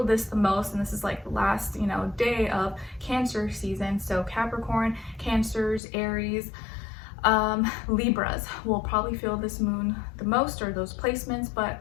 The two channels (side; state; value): right; drops out; at 5.8 s